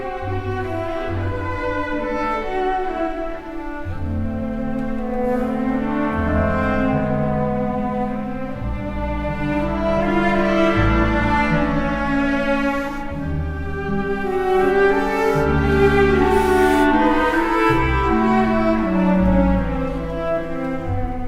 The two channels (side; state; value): both; identical; correlation 1.00